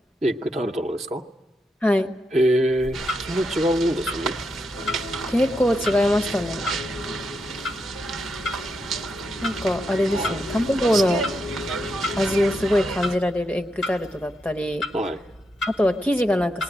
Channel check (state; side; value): normal; both; correlation 0.83